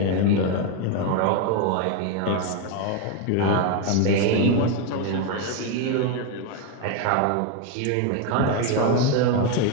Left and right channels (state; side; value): different; both; correlation 0.02